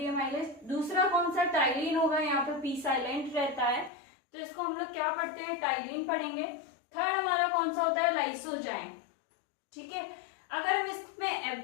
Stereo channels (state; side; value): drops out; right; at 3.9 s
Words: एमाइलेज। दूसरा कौन सा, टाइलिन होगा, यहाँ पे पी साइलेंट रहता है, तो इसको हम लोग क्या पढ़ते हैं, टाइलिन पढ़ेंगे। थर्ड हमारा कौन सा होता है, लाइसोजाइम। ठीक है, अगर हम